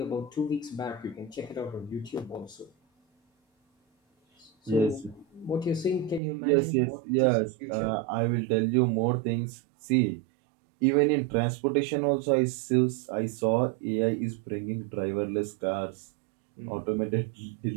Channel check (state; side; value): drops out; left; at 6.2 s